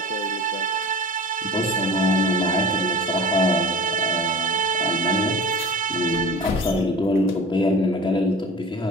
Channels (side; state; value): both; normal; correlation 0.38